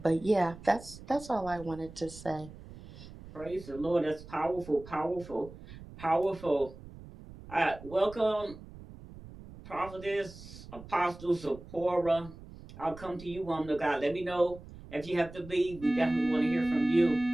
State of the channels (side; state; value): right; noise; rumble, 16 dB below the sound